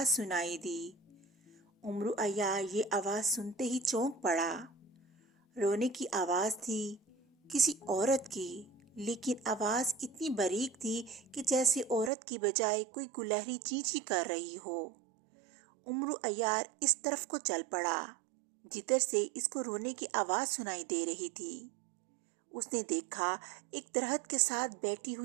سنائی دی۔ امرو عیار یہ آواز سنتے ہی چونک پڑا۔ رونے کی آواز تھی کسی عورت کی، لیکن آواز اتنی باریک تھی کہ جیسے عورت کی بجائے کوئی گلہری چینچی کر رہی ہو۔ امرو عیار اس طرف کو چل پڑا جدھر سے اس کو رونے کی آواز سنائی دے رہی تھی۔ اس نے دیکھا ایک درخت کے ساتھ بیٹھی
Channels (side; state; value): left; drops out; at 12.1 s